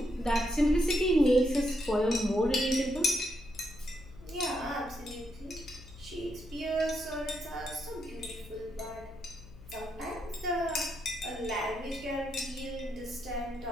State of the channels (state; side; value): noise; left; hum, 18 dB below the sound